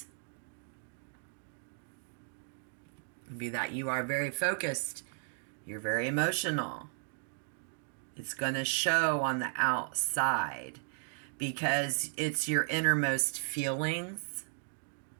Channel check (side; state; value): left; silent; digital silence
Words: would be that you are very focused. You're very emotional. It's going to show on the outside because it's your innermost feelings.